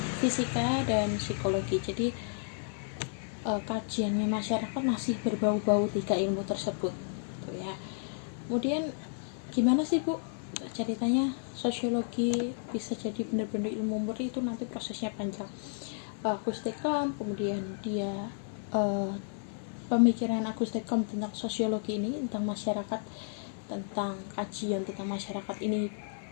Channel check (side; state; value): right; silent; 56 dB below the other